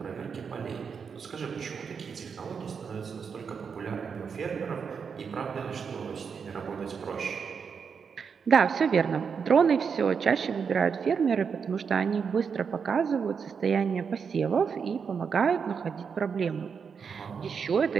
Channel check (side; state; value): left; quieter; 6.2 dB